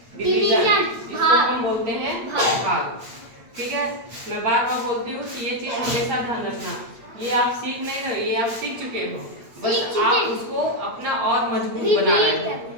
डिवीजन, जिसको हम बोलते हैं भाग। ठीक है, मैं बार बार बोलती हूँ कि ये चीज हमेशा ध्यान रखना। ये आप सीख नहीं रहे, ये आप सीख चुके हो, बस आप उसको अपना और मजबूत बना रहे हो,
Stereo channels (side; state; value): left; late; 8.8 ms